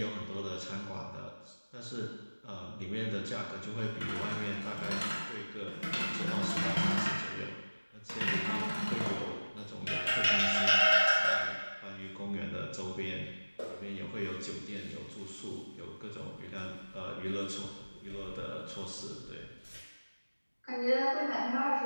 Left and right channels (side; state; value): both; inverted; correlation -1.00